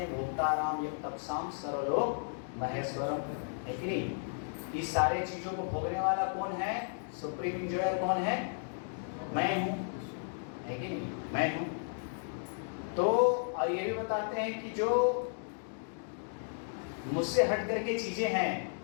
भोक्ता राम यज्ञ तपसाम सर्वलोक महेश्वरम, है कि नहीं? इस सारे चीज़ों को भोगने वाला कौन है? सुप्रीम इंजॉयर कौन है? मैं हूँ, है कि नहीं? मैं हूँ। तो और ये भी बताते हैं कि जो मुझसे हट करके चीजें हैं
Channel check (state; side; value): silent; right; digital silence